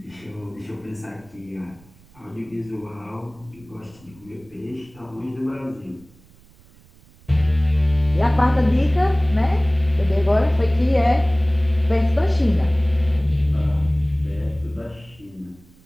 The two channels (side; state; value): right; noise; rumble, 27 dB below the sound